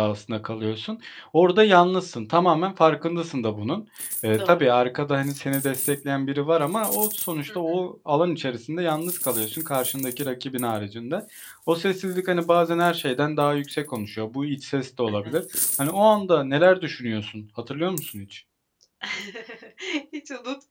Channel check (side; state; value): both; identical; correlation 1.00